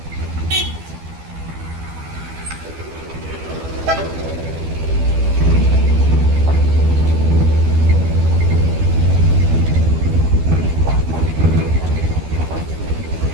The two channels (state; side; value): late; left; 12 ms